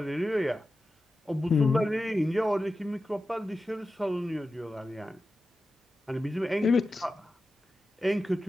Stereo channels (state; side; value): normal; both; correlation 0.93